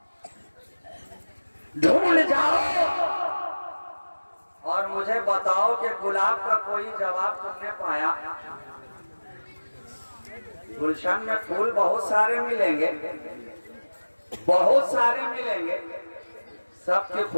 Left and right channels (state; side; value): inverted; both; correlation -1.00